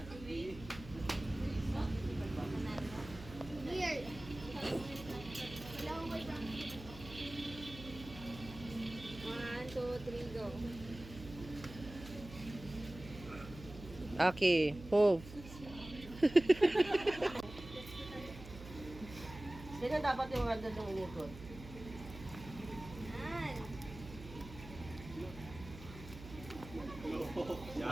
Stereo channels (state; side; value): noise; right; hum, 14 dB below the sound